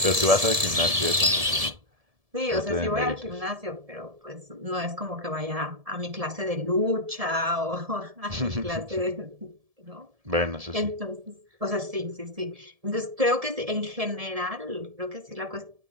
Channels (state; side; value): late; left; 1.7 ms